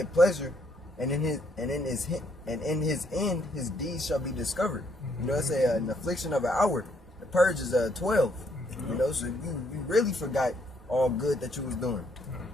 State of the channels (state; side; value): normal; both; correlation 0.71